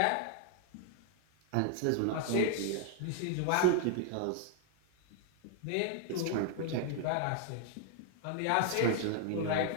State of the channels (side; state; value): both; different; correlation 0.00